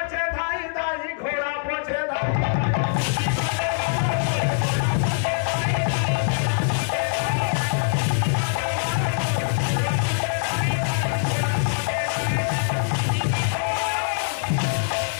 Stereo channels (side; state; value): right; silent; 63 dB below the other